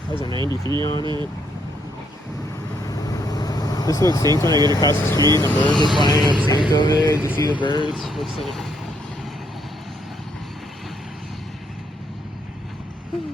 Has a 93 on it. This looks synced when I get across the street and the birds are flying up synced over there. Did you see the birds? Looks synced.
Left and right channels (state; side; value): normal; both; correlation 0.73